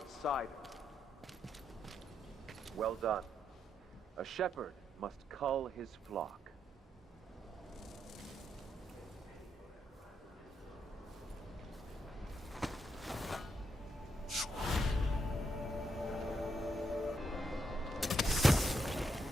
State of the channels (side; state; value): both; normal; correlation 0.80